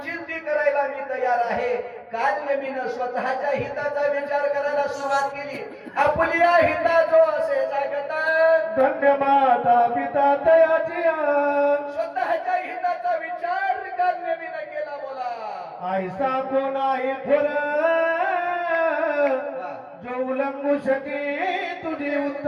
ती करायला मी तयार आहे. कालनेमीनं स्वतःच्या हिताचा विचार करायला सुरुवात केली. आपल्या हिताचो असे जागता धन्य माता पिता तयाची स्वतःच्या हिताचा विचार कालनेमीनं केला. बोला ऐसा कोण आहे थोर जो उल्लंघू शके तुझे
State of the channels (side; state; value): both; identical; correlation 1.00